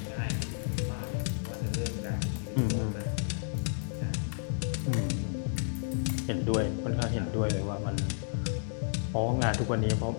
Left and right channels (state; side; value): silent; right; digital silence